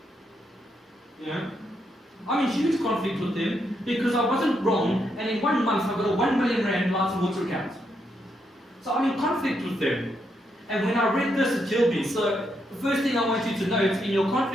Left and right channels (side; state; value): both; normal; correlation 0.79